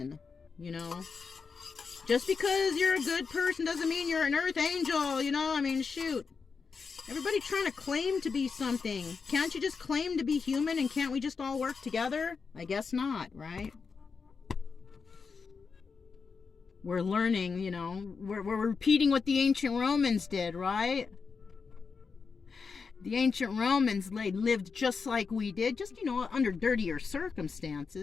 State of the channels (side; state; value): right; quieter; 5.2 dB